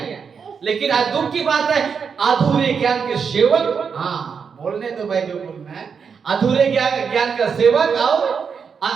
लेकिन आज दुख की बात है, अधूरे ज्ञान के सेवक, हाँ बोलने तो भाई जो बोलना है, अधूरे ज्ञान का सेवक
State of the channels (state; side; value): quieter; left; 6.2 dB